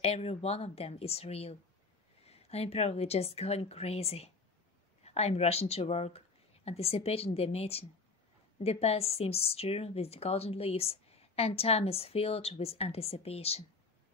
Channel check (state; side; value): quieter; right; 4.0 dB